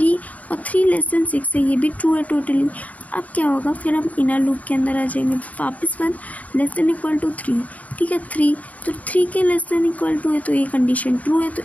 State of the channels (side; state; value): right; late; 0.071 ms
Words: और 3 लेस देन 6 है, ये भी ट्रू है टोटली। अब क्या होगा, फिर हम इनर लूप के अंदर आ जाएंगे, वापस 1 लेस देन इक्वल टू 3, ठीक है, 3 तो 3 के लेस देन इक्वल टू है तो ये कंडीशन ट्रू है, तो